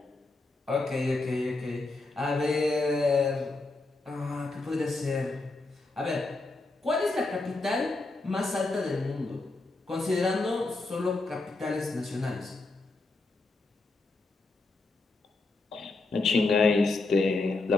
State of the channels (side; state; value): right; quieter; 3.4 dB